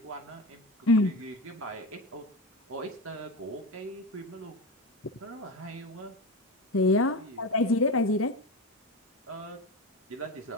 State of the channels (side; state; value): both; normal; correlation 0.22